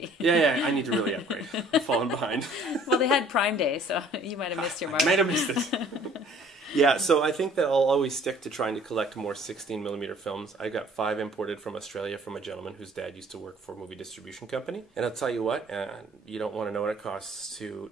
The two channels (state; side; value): normal; both; correlation 0.55